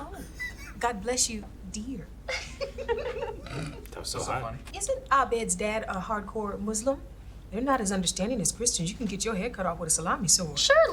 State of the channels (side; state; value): both; identical; correlation 1.00